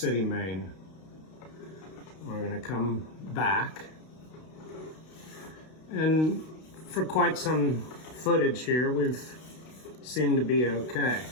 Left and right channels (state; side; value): late; right; 32 ms